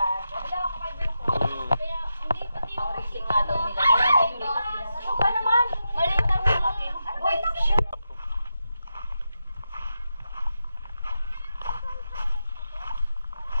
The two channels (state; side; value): inverted; both; correlation -0.88